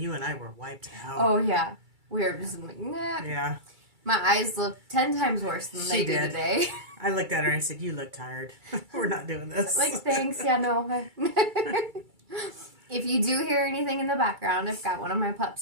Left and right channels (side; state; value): left; late; 2.3 ms